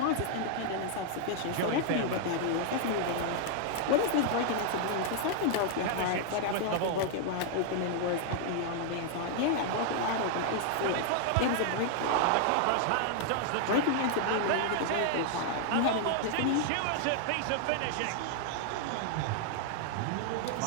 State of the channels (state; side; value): different; both; correlation 0.00